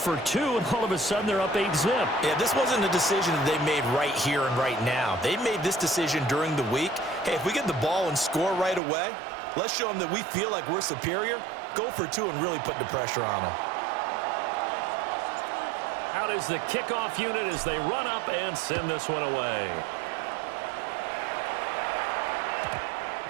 2, and all of a sudden they're up 8-zip. Yeah, this wasn't a decision that they made right here and right now. They made this decision during the week. Hey, if we get the ball and score right away, let's show them that we feel like we're superior. Go for 2 and really put the pressure on them. Out is the kickoff unit as they run up and send this one away.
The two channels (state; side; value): drops out; left; at 8.8 s